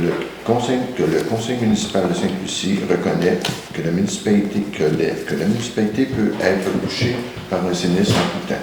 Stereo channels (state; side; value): identical; both; correlation 1.00